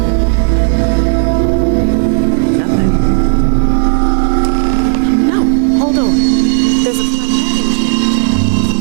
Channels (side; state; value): left; silent; digital silence